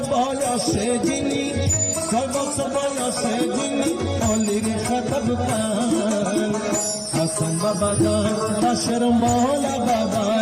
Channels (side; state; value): both; identical; correlation 1.00